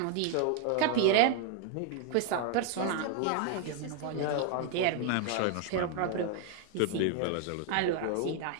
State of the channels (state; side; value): different; both; correlation 0.00